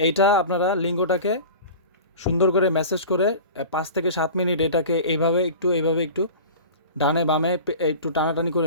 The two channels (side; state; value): both; inverted; correlation -0.36